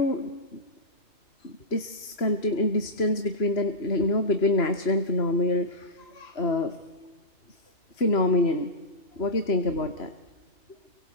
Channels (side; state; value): right; late; 3.0 ms